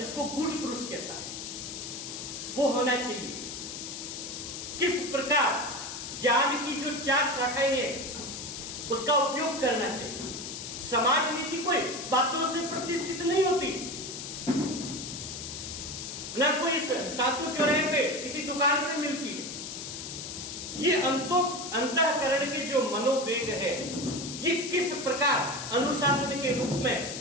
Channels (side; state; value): left; noise; hiss, 8 dB below the sound